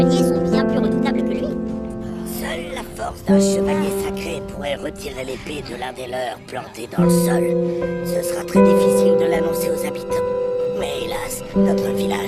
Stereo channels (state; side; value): identical; both; correlation 1.00